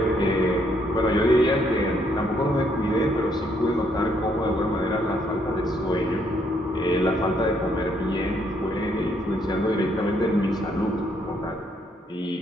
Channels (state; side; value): normal; both; correlation 0.71